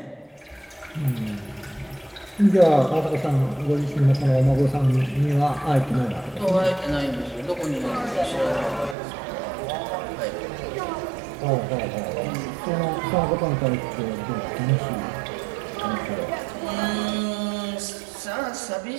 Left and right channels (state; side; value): drops out; left; at 9.0 s